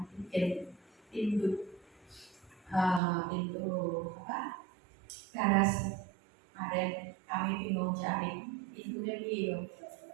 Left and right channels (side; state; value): left; drops out; at 3.0 s